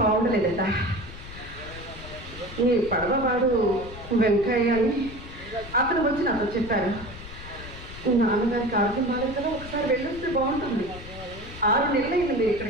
బాగుండలేదట. ఈ పడవవాడు వెంకయ్య అని అతను వచ్చి నాతో చెప్పారు. నాన్నగారికి ఆరోగ్యం బాగాలేదు కదా, ఒకసారి వెళ్ళొస్తే బాగుంటుంది. 6 నెలలైంది మీరు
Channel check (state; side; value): noise; left; rumble, 13 dB below the sound